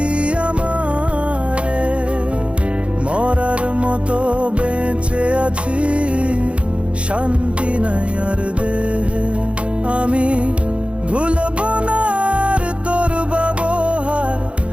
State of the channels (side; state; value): left; late; 0.060 ms